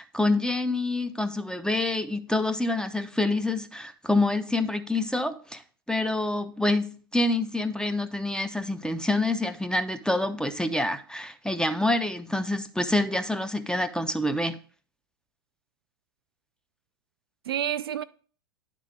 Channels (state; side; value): normal; both; correlation 0.77